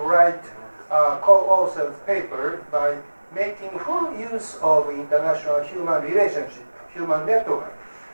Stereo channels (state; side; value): inverted; both; correlation -1.00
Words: co-authored paper by making full use of international human relationship, human network,